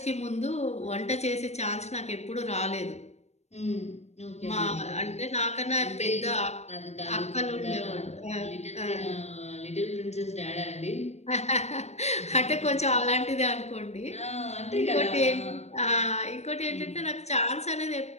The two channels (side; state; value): right; late; 0.32 ms